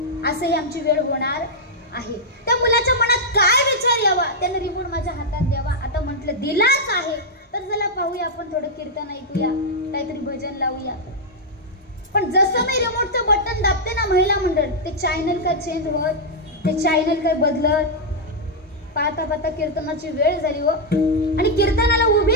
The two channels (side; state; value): both; normal; correlation -0.04